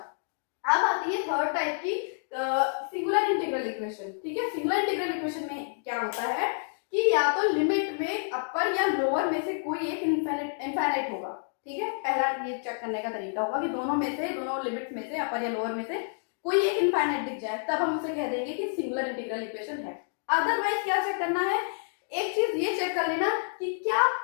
अब आती है थर्ड टाइप की सिंगुलर इंटीग्रल इक्वेशन, ठीक है। सिंगुलर इंटीग्रल इक्वेशन में क्या होता है कि या तो लिमिट में अपर या लोअर में से कोई एक इनफाइनाइट होगा, ठीक है। पहला ये चेक करने का तरीका होगा कि दोनों में से, दोनों लिमिट में से, अपर या लोअर में से कोई एक इनफाइनाइट दिख जाए, तब हम उसे कह देंगे कि सिंगुलर इंटीग्रल इक्वेशन है। अदरवाइज क्या चेक करना है, एक चीज ये चेक कर लेना कि क्या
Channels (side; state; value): right; silent; digital silence